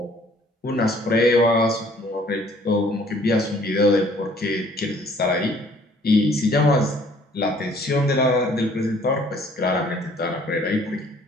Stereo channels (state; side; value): normal; both; correlation 0.57